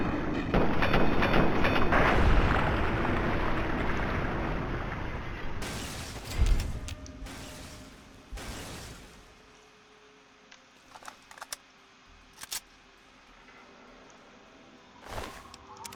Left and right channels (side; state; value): both; identical; correlation 1.00